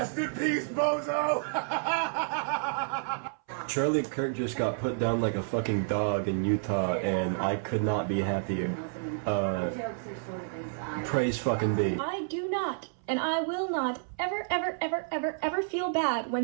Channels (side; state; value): left; silent; 58 dB below the other